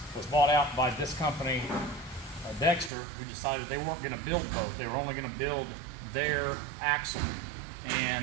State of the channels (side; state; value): left; drops out; at 2.9 s